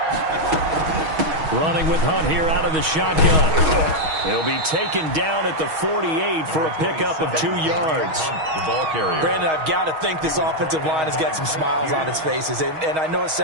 Running with Hunt here out of the shotgun. He'll be taken down at the 48 for a pickup of 2 yards. The ball carrier. Brandon, I've got to think this offensive line has got some smiles on its faces. And I know it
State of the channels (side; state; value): left; late; 6.3 ms